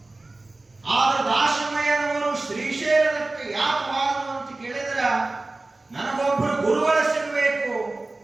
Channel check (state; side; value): quieter; left; 3.1 dB